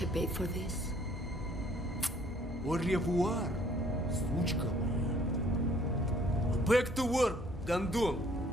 I paid for this? Au revoir, сучка моя. Back to work, Gondon.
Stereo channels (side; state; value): both; normal; correlation 0.59